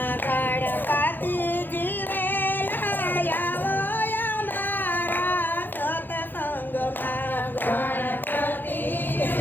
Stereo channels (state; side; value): late; right; 0.092 ms